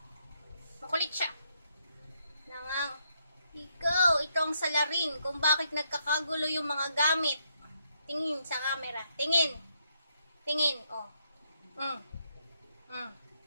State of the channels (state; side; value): inverted; both; correlation -0.76